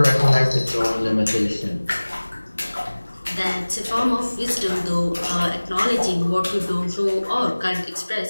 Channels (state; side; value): inverted; both; correlation -1.00